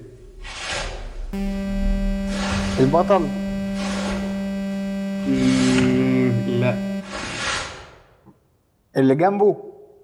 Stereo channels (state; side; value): identical; both; correlation 1.00